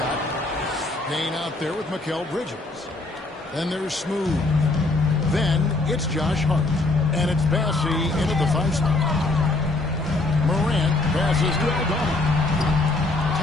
Payne out there with Mikal Bridges. Then there's Smooth. Then it's Josh Hart. And it's Bassey into the 5 slot. Morant passes to Aldama.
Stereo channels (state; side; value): quieter; right; 3.0 dB